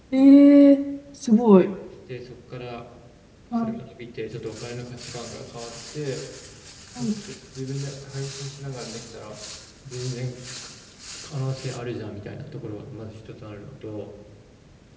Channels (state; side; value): identical; both; correlation 1.00